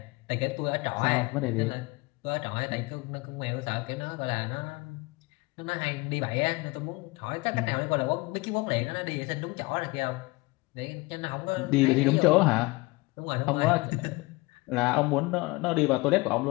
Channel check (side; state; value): right; quieter; 23.6 dB